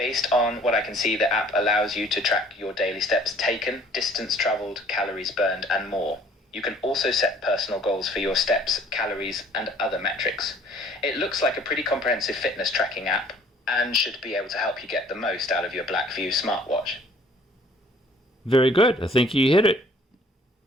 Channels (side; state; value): both; normal; correlation 0.56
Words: on what I can see, the app allows you to track your daily steps taken, distance traveled, calories burned, and more. You can also set personal goals for your steps, calories, and other metrics. It looks like a pretty comprehensive fitness tracking app and should be able to help you get the most out of your BLACKVIEW smartwatch. Very good. I think you hit it.